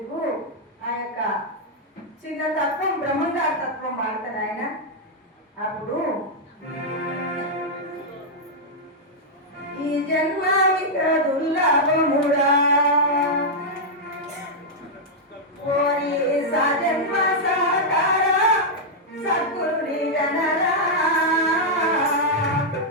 ఆ యొక్క చిన్న తత్వం బ్రహ్మంగార తత్వం వాడతాడు ఆయన. అప్పుడు ఈ జన్మావిక దుర్లభముడా కోరి సజన్మ సాకార సద్గురుని గణరా.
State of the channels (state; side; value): normal; both; correlation -0.05